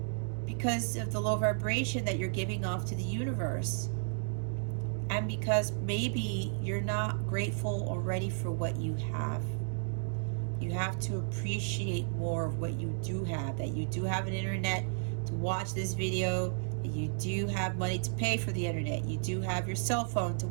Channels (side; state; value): left; silent; digital silence